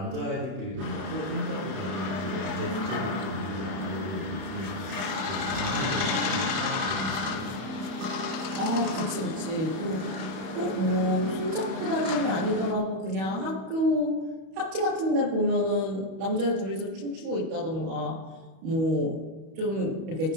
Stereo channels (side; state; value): left; late; 31 ms